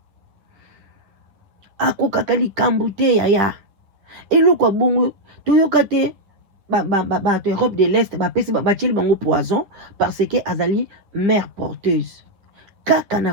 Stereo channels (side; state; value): left; late; 9.8 ms